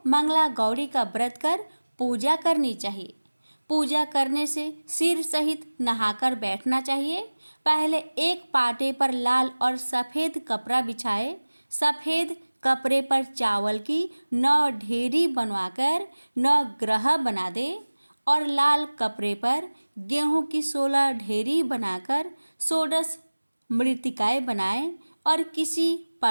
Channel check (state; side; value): inverted; both; correlation -1.00